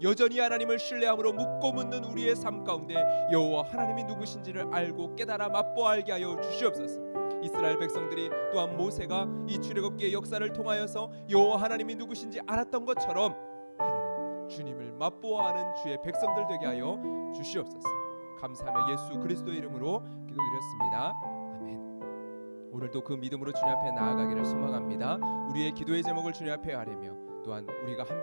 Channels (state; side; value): inverted; both; correlation -1.00